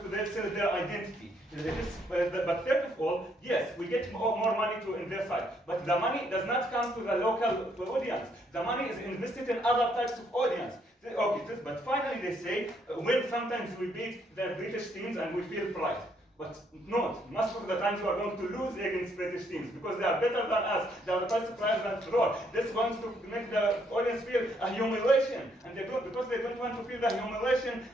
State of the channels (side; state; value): both; normal; correlation 0.71